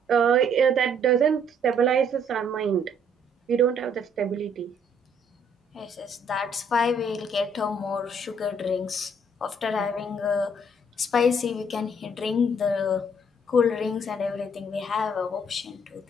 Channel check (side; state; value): both; normal; correlation 0.64